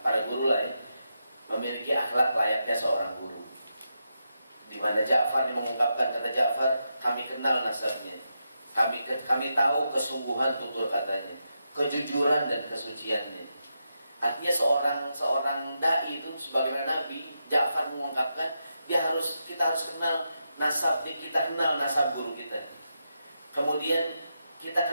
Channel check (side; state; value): both; inverted; correlation -0.85